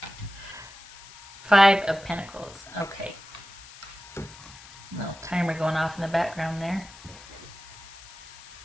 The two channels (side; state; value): left; noise; hiss, 18 dB below the sound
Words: Five of Pentacles. Okay. Little timer going off in the background there.